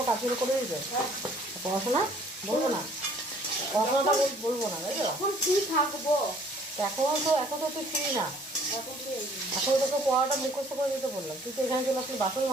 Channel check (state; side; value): normal; both; correlation 0.58